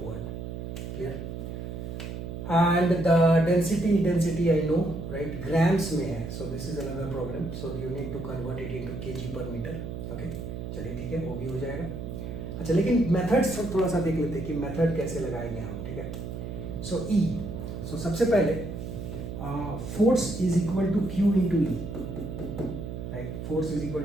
Clear? And the density I know, right, grams में है. So this is another problem. So you need to convert it into KG per metre. Okay, चलिए ठीक है, वो भी हो जाएगा. अच्छा, लेकिन मेथड्स थोड़ा सा देख लेते हैं कि मेथड कैसे लगाएंगे हम. ठीक है. सो ई, सो सबसे पहले force is equal to Q into E. Right, force is equal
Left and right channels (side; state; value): right; noise; hum, 7 dB below the sound